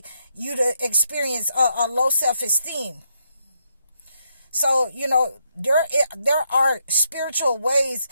you to experience a low self-esteem. So, there are spiritual ways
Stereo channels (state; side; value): inverted; both; correlation -0.78